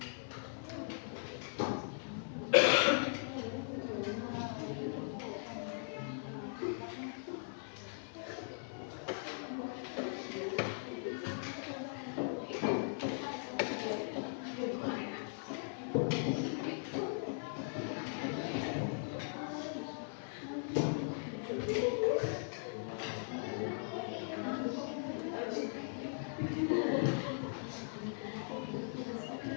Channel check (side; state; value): right; silent; 52 dB below the other